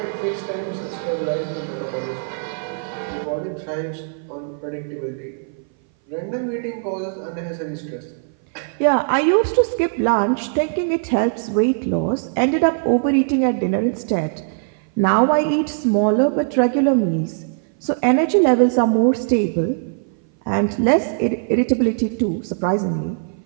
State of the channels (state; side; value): silent; left; 59 dB below the other